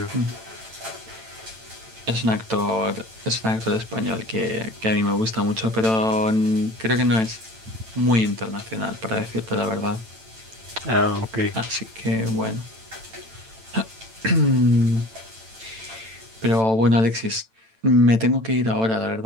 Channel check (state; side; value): late; left; 9.0 ms